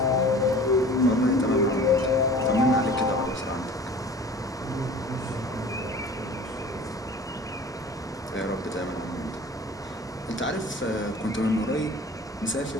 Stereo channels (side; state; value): both; normal; correlation 0.43